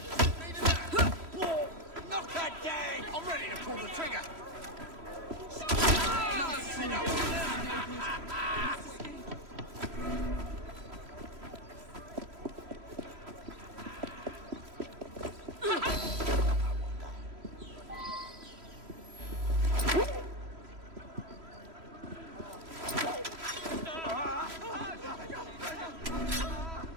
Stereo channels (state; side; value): late; left; 3.0 ms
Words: Knock her down! I'm ready to pull the trigger!